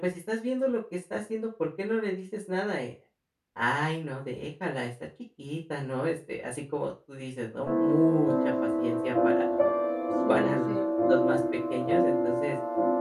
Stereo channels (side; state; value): both; identical; correlation 1.00